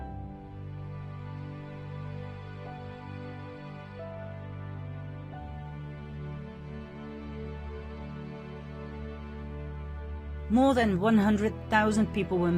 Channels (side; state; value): both; identical; correlation 1.00